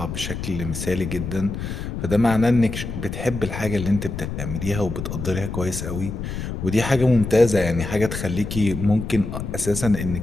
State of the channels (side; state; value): left; noise; rumble, 6 dB below the sound